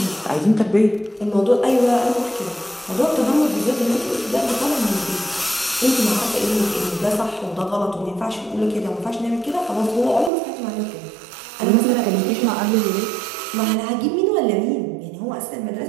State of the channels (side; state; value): left; drops out; at 10.3 s